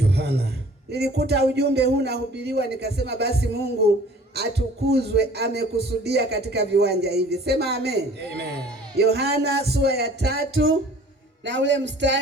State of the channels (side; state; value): both; normal; correlation 0.50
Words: Nilikuta ujumbe huu nahubiriwa nikasema basi Mungu atukuzwe, amekusudia katika viwanja hivi. Sema amen. Amen. Yohana sura ya 3 na ule